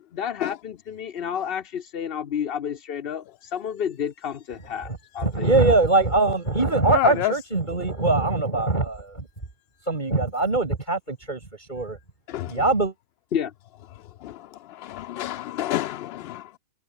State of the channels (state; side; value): late; right; 2.2 ms